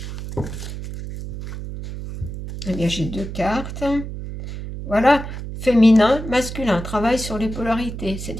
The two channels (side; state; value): right; noise; hum, 8 dB below the sound